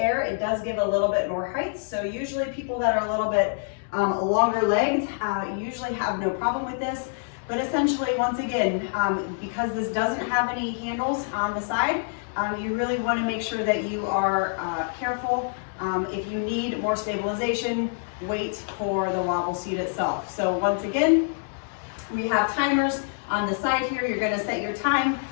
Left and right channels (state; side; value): silent; right; digital silence